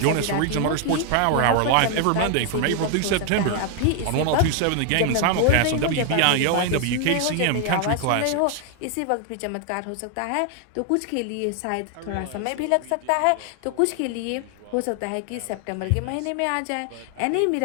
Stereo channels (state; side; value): different; both; correlation 0.00